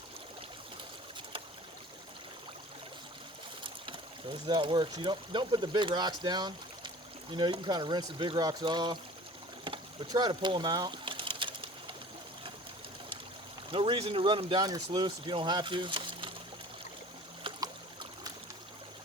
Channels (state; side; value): normal; both; correlation 0.44